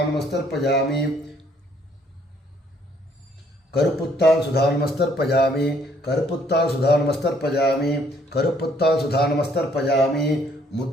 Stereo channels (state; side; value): normal; both; correlation 0.65